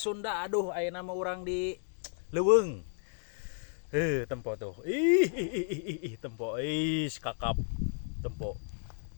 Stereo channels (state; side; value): silent; right; digital silence